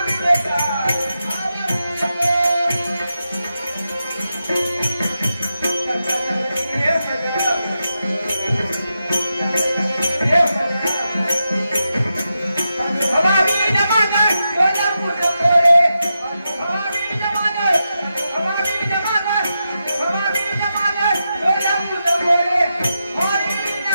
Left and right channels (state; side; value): inverted; both; correlation -0.88